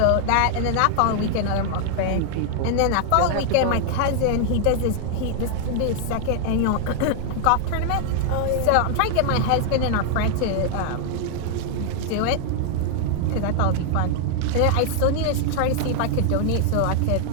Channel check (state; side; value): different; both; correlation 0.00